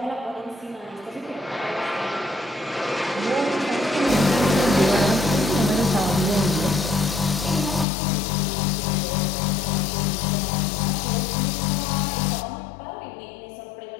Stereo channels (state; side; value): drops out; right; at 7.9 s